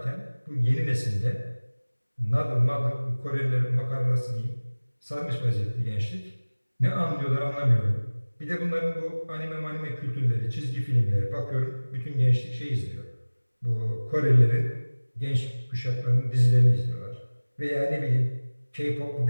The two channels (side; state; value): both; inverted; correlation -1.00